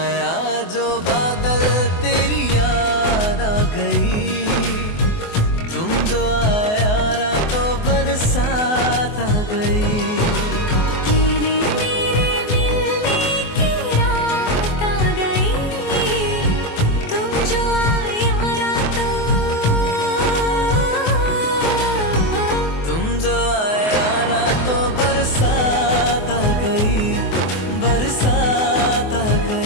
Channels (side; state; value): right; late; 24 ms